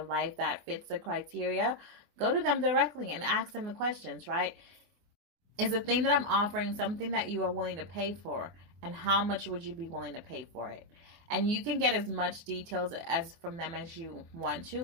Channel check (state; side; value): late; left; 24 ms